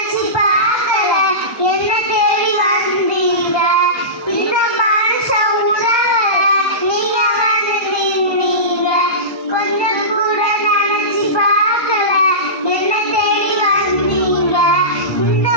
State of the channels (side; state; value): right; late; 1.2 ms